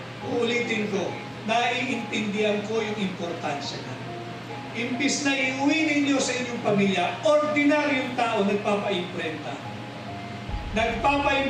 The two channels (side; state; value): both; identical; correlation 1.00